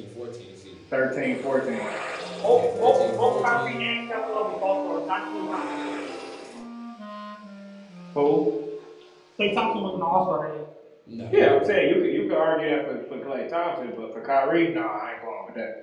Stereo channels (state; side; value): identical; both; correlation 1.00